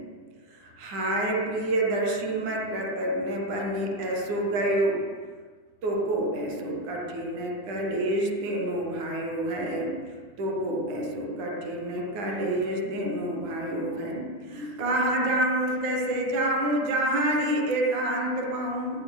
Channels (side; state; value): left; late; 9.6 ms